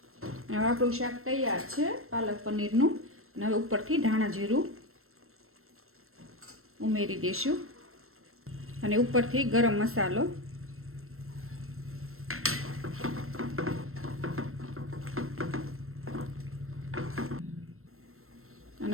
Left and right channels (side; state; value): left; late; 0.62 ms